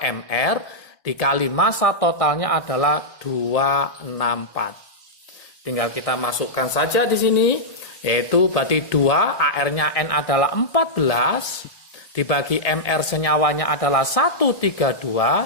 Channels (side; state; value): right; late; 1.8 ms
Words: MR dikali massa totalnya adalah 264. Tinggal kita masukkan saja di sini, yaitu berarti 2 AR-nya N adalah 14 dibagi MR senyawanya adalah